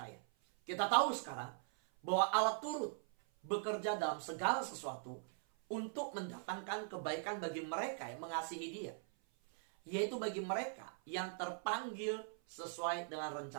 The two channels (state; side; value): silent; left; 50 dB below the other